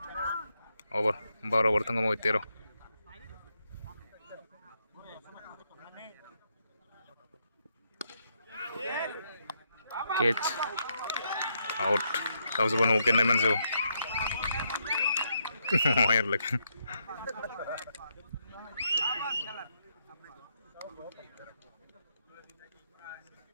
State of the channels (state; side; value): inverted; both; correlation -0.79